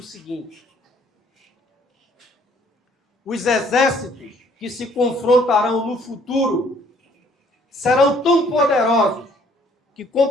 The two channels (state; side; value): normal; both; correlation 0.61